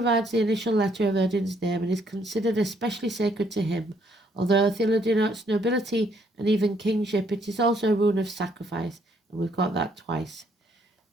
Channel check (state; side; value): normal; both; correlation 0.68